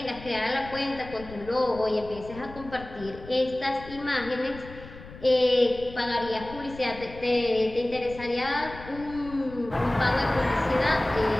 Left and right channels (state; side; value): noise; left; rumble, 16 dB below the sound